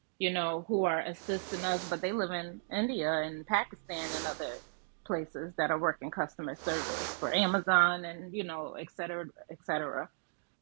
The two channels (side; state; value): left; silent; digital silence